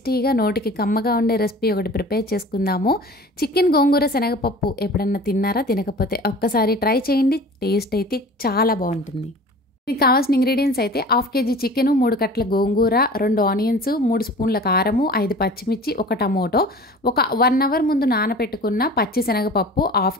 నోటికి కమ్మగా ఉండే రెసిపీ ఒకటి ప్రిపేర్ చేసుకుందాము. చికెన్ గోంగూర శనగపప్పు ఎప్పుడన్నా తిన్నారా? తినకపోతే ఒక్కసారి ట్రై చేయండి. టేస్ట్ అయితే చాలా బాగుంటుంది. దీనికి కావాల్సిన ఇంగ్రీడియంట్స్ అయితే 1/2 kg చికెను, 3 కట్టల గోంగూర, 2 ఆనియన్స్, 3 స్పూన్ల కారము, 5 పచ్చిమిర్చి, 1 టమోటో, ఒక 1 అవర్ ముందు నానబెట్టుకున్న పచ్చి శనగపప్పు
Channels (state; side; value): normal; both; correlation 0.41